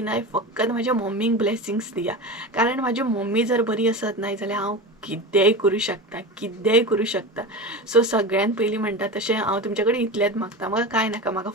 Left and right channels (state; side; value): normal; both; correlation 0.27